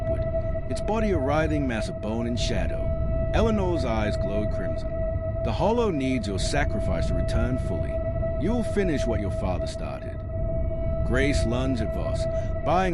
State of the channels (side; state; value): both; identical; correlation 1.00